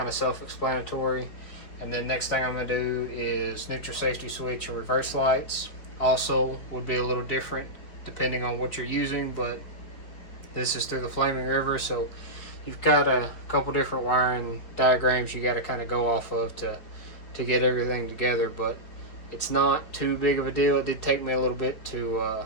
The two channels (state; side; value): late; right; 5.0 ms